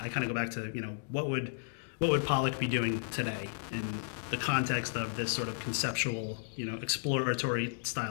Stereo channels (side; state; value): right; silent; digital silence